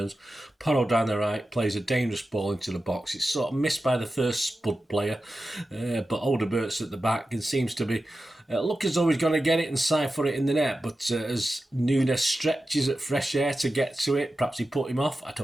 Porro down the right plays a dangerous ball into the box. It's sort of missed by the first Spud player, but Odebert's at the back and seems to be look as though he's going to get it and siphon it in the net. But as Nunes stretches at fresh air to get to it, perhaps he put him off, I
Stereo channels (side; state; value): both; normal; correlation 0.93